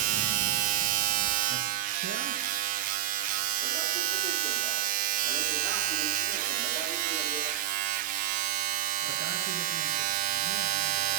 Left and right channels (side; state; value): left; quieter; 12.5 dB